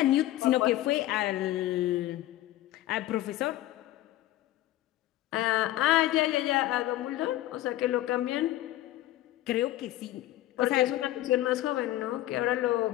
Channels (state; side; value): quieter; right; 15.0 dB